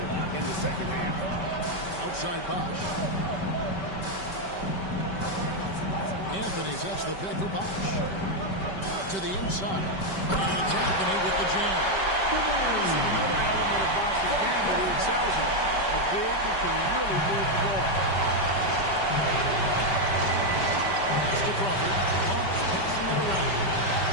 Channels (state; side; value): late; right; 5.2 ms